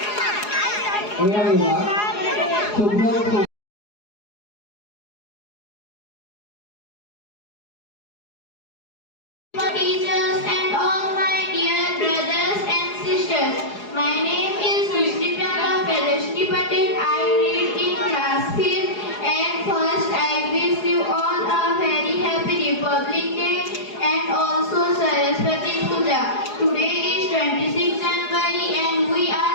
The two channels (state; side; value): late; right; 4.8 ms